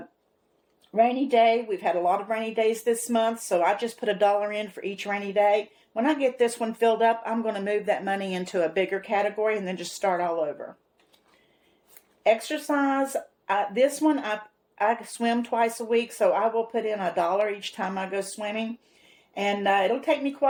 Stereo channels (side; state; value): both; identical; correlation 1.00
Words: Rainy day. We've had a lot of rainy days this month, so I just put $1 in for each rainy day. When I get this one filled up, I'm going to move that money into a bigger category and then just start all over. Exercise. This one, I swim twice a week, so I will put in $1 each time I go swimming. And it'll take me